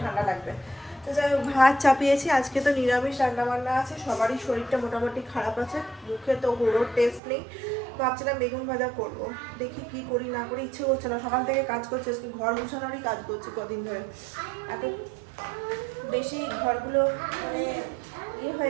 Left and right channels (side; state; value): left; drops out; at 7.2 s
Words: ঠান্ডা লাগবে। তো যাই হোক, ভাত চাপিয়েছি, আজকে তো নিরামিষ রান্নাবান্না আছে, সবারই শরীরটা মোটামুটি খারাপ আছে, মুখে তো হুড়োর টেস্ট নেই। ভাবছিলাম বেগুন ভাজা করবো, দেখি কি করি না করি, ইচ্ছে করছে না। সকাল থেকে কাজ করছে, আজকে ঘর গুছানোরই কাজ করছি কদিন ধরে, এত বেশি ঘরগুলো মানে ইয়ে